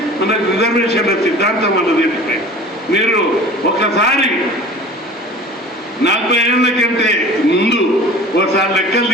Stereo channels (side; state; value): both; normal; correlation 0.42